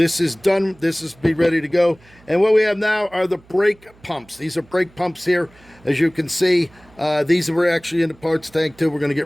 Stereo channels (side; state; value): right; noise; hum, 28 dB below the sound